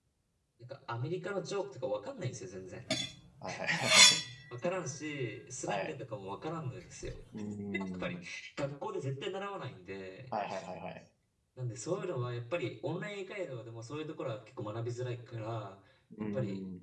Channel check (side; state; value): both; identical; correlation 1.00